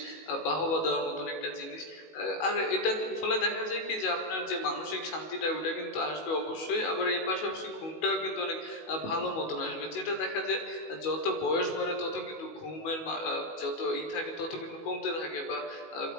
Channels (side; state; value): right; late; 19 ms